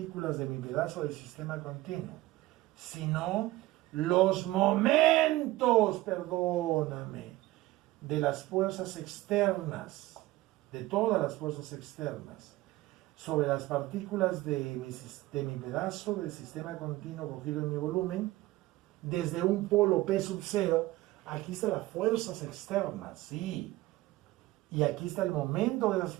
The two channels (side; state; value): left; quieter; 18.1 dB